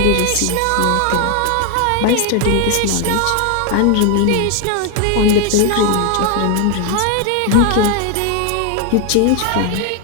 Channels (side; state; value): both; different; correlation 0.01